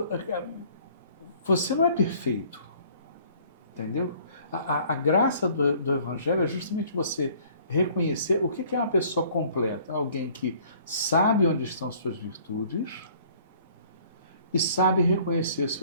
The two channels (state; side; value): inverted; both; correlation -0.56